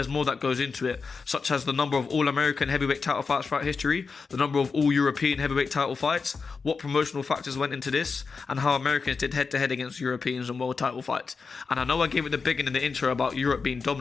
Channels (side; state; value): right; quieter; 4.9 dB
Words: more that goes into it, such as the number of all-American heavyweight title fights throughout history, the number of all-European heavyweight title fights, what promotional factors went into this, and how Americans did head-to-head against Europeans in world title fights. And I know I gave it the big one in the intro about Europe being